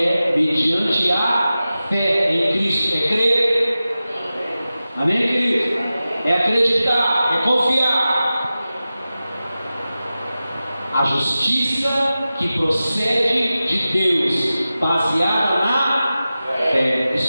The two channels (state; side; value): inverted; both; correlation -0.94